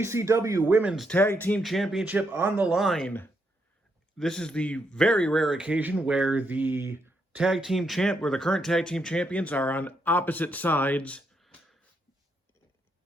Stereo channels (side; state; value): both; normal; correlation 0.78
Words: Women's Tag Team Championship on the line. This is the very rare occasion where the current tag team champions are on opposite sides